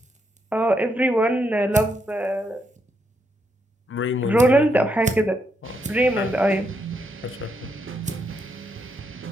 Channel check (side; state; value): both; normal; correlation 0.79